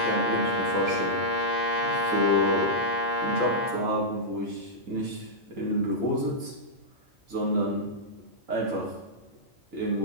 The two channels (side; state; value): both; normal; correlation -0.11